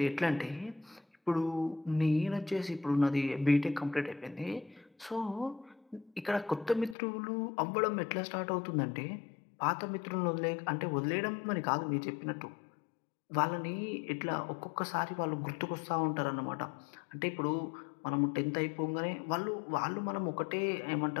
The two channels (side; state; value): right; drops out; at 7.0 s